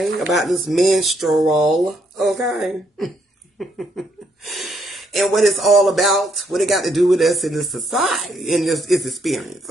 About this menstrual, okay? And what it's all about, what it got to do with us in this society, in this experience,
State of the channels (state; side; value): normal; both; correlation 0.73